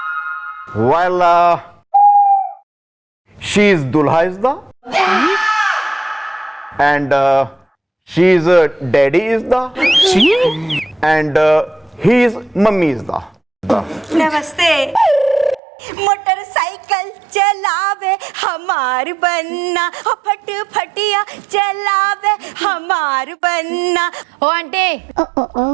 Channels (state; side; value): drops out; left; at 15.6 s